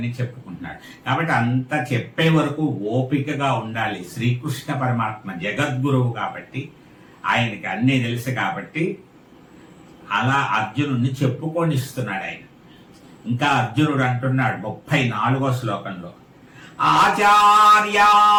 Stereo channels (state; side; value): identical; both; correlation 1.00